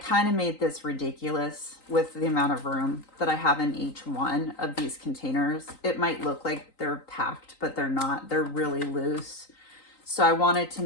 of made this ridiculous with the amount of room that I have in each one of these containers. It might look like they're packed, but they're not. They're really loose. So I wanted to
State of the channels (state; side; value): late; right; 3.9 ms